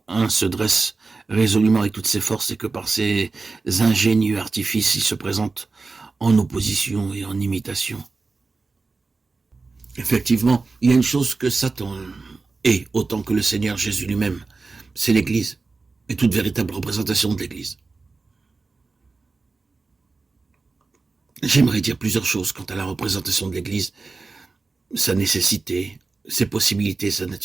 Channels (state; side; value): quieter; left; 3.9 dB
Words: 1 se dresse résolument avec toutes ses forces et que par ses ingénieux artifices, il se présente en opposition et en imitation. Effectivement, il y a une chose que Satan est autant que le Seigneur Jésus lui-même, c'est l'Église et toute véritable représentation de l'Église. J'aimerais dire plusieurs choses quant à la représentation de l'Église, sa nécessité, ses possibilités, sa